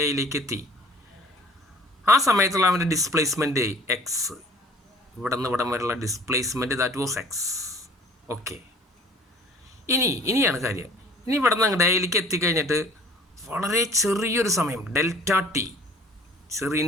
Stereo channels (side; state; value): both; normal; correlation 0.50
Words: എയിലേക്ക് എത്തി. ആ സമയത്തുള്ള അവൻ്റെ ഡിസ്പ്ലേസ്മെൻറ്റ് എക്സ്. ഇവിടെ നിന്ന് ഇവിടം വരെയുള്ള displacement that was X. Okay, ഇനിയാണ് കാര്യം. ഇനി ഇവിടെ നിന്ന് അങ്ങോട്ട് എയിലേക്ക് എത്തിക്കഴിഞ്ഞിട്ട് വളരെ ചെറിയൊരു സമയം, ഡെൽറ്റ ടി,